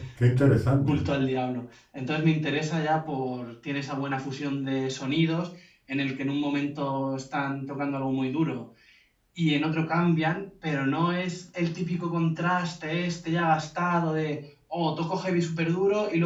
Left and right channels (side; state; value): both; identical; correlation 1.00